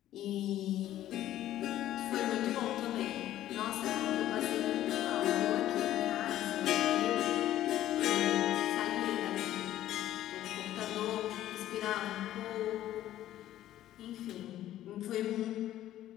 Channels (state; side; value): quieter; right; 13.1 dB